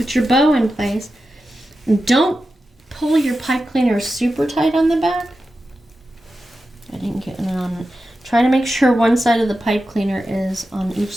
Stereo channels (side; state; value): both; normal; correlation 0.91